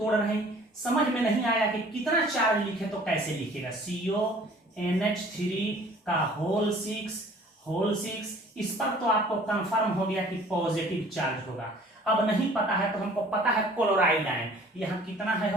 रहे हैं, समझ में नहीं आया कि कितना चार्ज लिखे तो कैसे लिखेगा। CONH3 का होल 6, इस पर तो आपको कंफर्म हो गया कि पॉजिटिव चार्ज होगा। अब नहीं पता है तो हमको पता है क्लोराइड आयन, यहाँ कितना है,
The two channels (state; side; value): normal; both; correlation 0.51